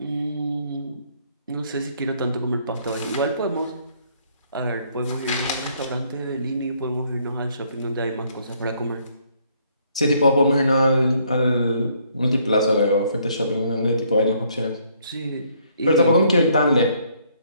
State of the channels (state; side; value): inverted; both; correlation -0.67